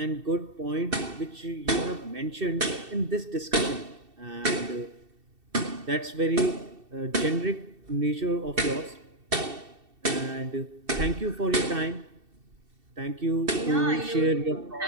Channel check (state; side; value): late; left; 2.7 ms